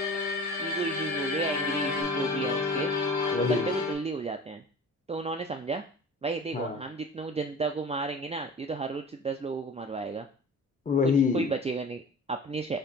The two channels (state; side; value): normal; both; correlation 0.39